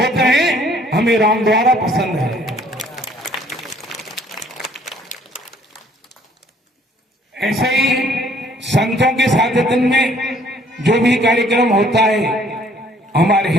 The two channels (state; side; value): normal; both; correlation 0.60